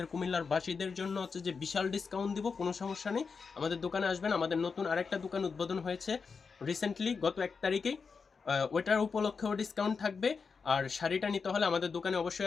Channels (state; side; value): quieter; right; 5.2 dB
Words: কুমিল্লার বাসীদের জন্য হচ্ছে যে বিশাল ডিসকাউন্ট দিব, কোনো সমস্যা নেই। আমাদের দোকানে আসবেন। আমাদের নতুন আরেকটা দোকান উদ্বোধন হয়েছে রিসেন্টলি, গত 1 তারিখেই। ওইটার উপলক্ষেও ডিসকাউন্ট থাকবে। আর শাড়িটা নিতে হলে আমাদের দোকানে